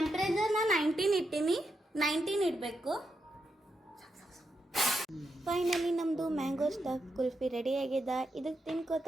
19 ಇಟ್ಟೀನಿ, 19 ಇಡಬೇಕು. ಫೈನಲಿ ನಮ್ಮದು ಮ್ಯಾಂಗೋ ಸ್ಟಫ್ ಕುಲ್ಫಿ ರೆಡಿ ಆಗಿದೆ. ಇದಕ್ಕೆ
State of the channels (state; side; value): normal; both; correlation 0.84